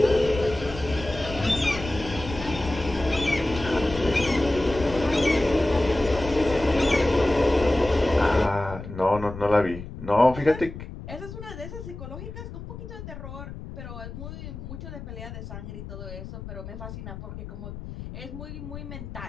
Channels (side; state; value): left; noise; rumble, 11 dB below the sound